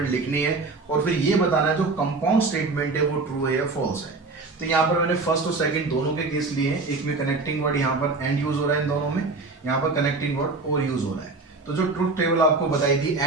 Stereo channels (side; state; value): left; quieter; 3.7 dB